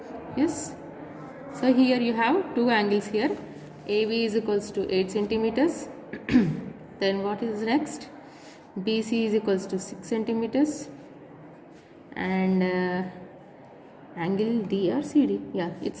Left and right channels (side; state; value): both; identical; correlation 1.00